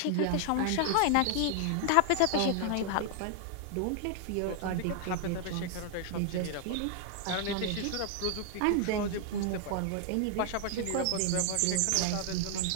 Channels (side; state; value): both; different; correlation 0.00